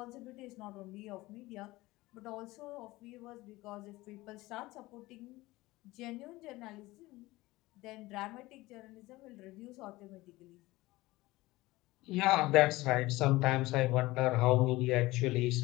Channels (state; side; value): quieter; right; 19.5 dB